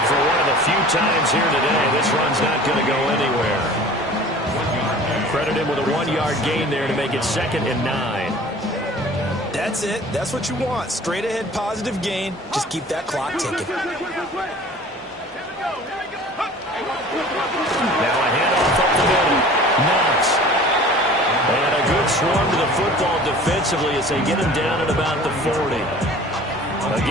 for one of the few times here today, this run's not going to go anywhere. Credit him with a 1-yard gain there to make it 2nd and 9. That's it. That's what you want. Straight ahead positive gain. Just keep that clock ticking. Now a handoff up the middle. Knox. And a good swarm to the football defensively as they get him down at about the 40. A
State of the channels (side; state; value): both; normal; correlation 0.45